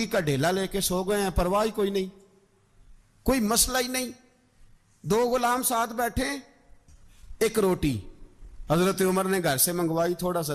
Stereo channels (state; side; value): identical; both; correlation 1.00